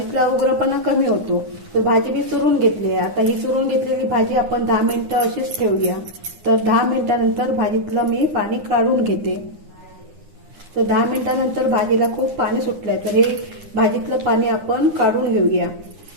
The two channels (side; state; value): left; late; 9.8 ms